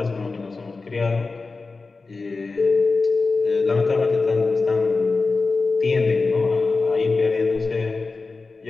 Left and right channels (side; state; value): right; quieter; 3.9 dB